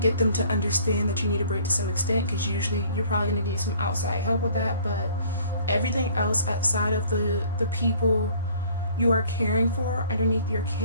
them to understand that you need a break to some extent, because usually you're probably going to need some outside help with that. But everything else outside of the people you are caring for underneath your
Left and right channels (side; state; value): both; inverted; correlation -0.54